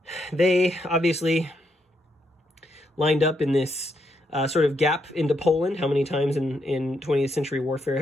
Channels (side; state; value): both; normal; correlation 0.78